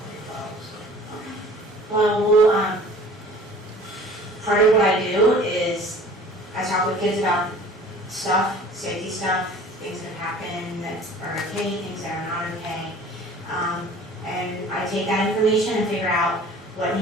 about, so. Well, part of what I do is I talk with kids about stuff, safety stuff, things that happen that are okay, things that are not okay. And I take that information and figure out what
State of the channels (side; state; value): both; normal; correlation 0.47